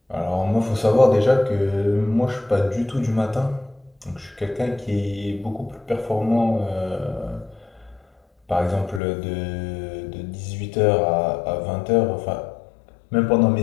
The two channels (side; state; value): right; drops out; at 9.0 s